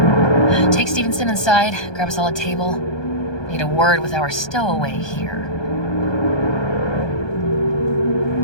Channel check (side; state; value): right; late; 1.2 ms